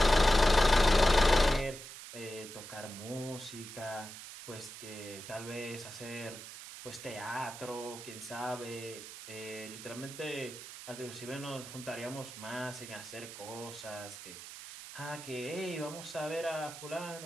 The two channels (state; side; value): noise; right; hiss, 12 dB below the sound